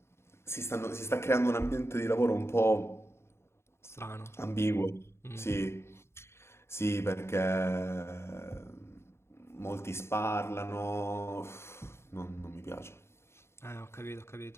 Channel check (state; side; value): late; right; 0.12 ms